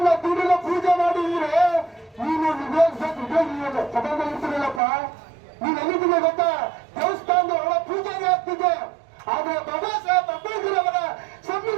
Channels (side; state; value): left; drops out; at 4.8 s